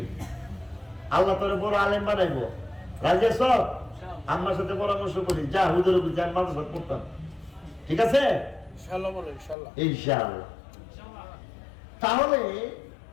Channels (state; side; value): drops out; right; at 9.6 s